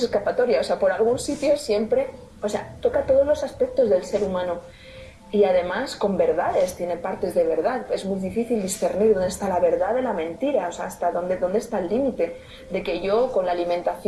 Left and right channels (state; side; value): identical; both; correlation 1.00